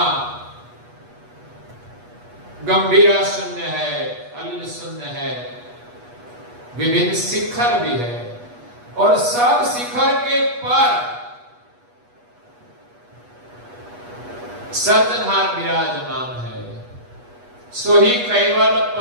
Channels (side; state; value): left; late; 8.3 ms